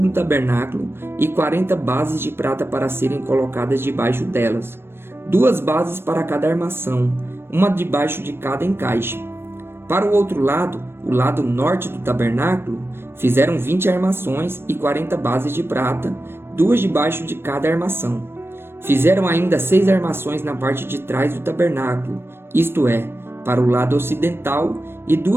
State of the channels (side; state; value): left; late; 0.11 ms